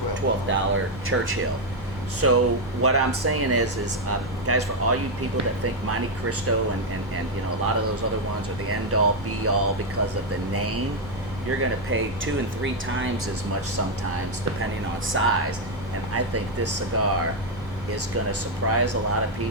$12 Churchill. So what I'm saying is guys, for all you people that think Monte Cristo and you know, a lot of those other ones are the end all be all because of the name, you're going to pay 2 and 3 times as much sometimes depending on size. And I think this cigar is going to surprise a lot of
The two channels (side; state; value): both; normal; correlation 0.03